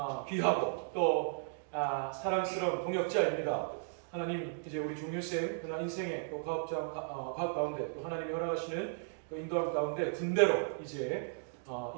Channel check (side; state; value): left; silent; digital silence